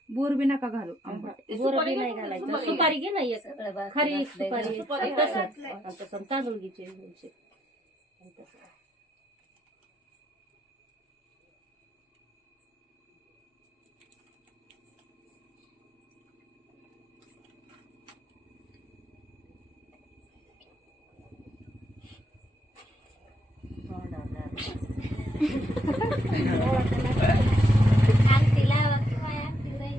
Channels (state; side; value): normal; both; correlation 0.77